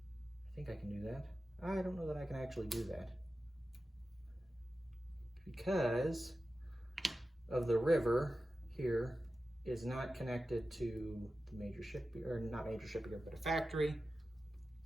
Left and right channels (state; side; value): normal; both; correlation 0.93